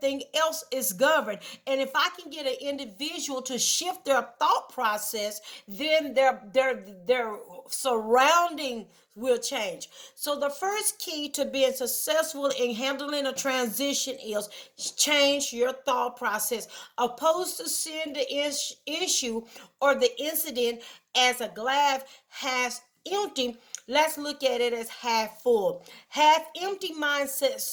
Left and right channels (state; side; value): identical; both; correlation 1.00